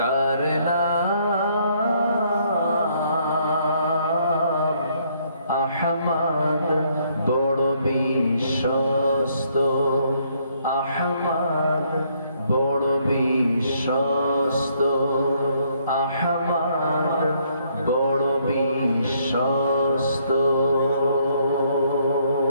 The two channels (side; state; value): both; inverted; correlation -0.69